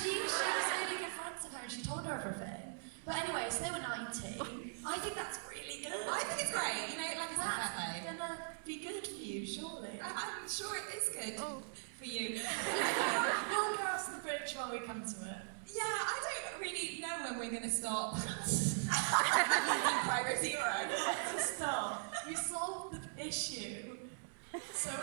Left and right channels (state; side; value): silent; left; digital silence